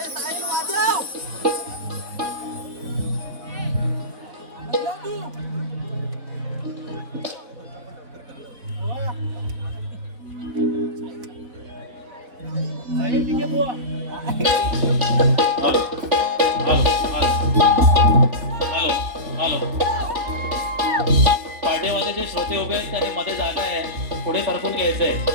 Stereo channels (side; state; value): left; late; 3.4 ms